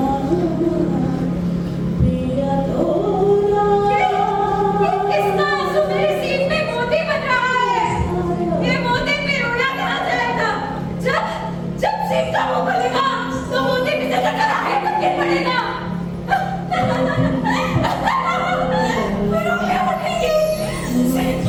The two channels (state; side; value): identical; both; correlation 1.00